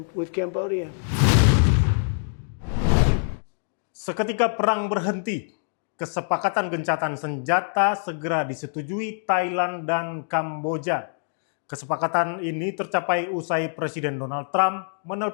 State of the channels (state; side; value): silent; right; digital silence